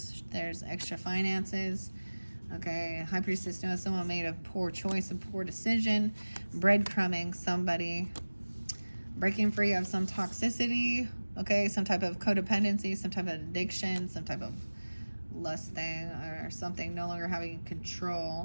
There's extra finances. Okay, High Priestess knows someone made a poor choice, a poor decision, breadcrumbing somebody, breaking free of some toxicity, okay, some type of codependency, some type of addiction, some type of lust thing or something, no longer having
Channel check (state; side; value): inverted; both; correlation -1.00